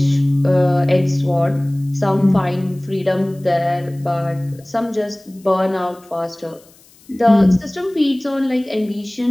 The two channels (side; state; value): left; noise; hiss, 28 dB below the sound